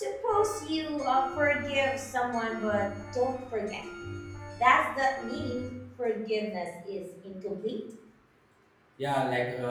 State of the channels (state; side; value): identical; both; correlation 1.00